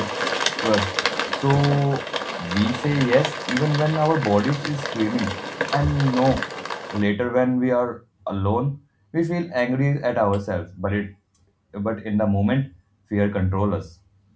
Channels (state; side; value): identical; both; correlation 1.00